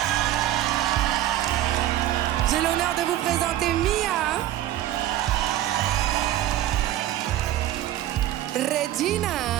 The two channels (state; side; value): quieter; left; 13.3 dB